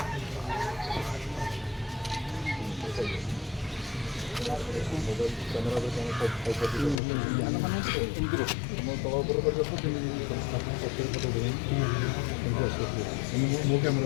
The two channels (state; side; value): drops out; right; at 7.0 s